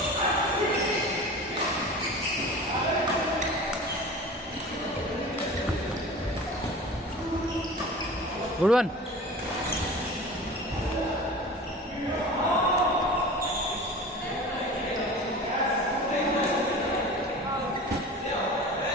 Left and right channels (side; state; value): both; normal; correlation 0.37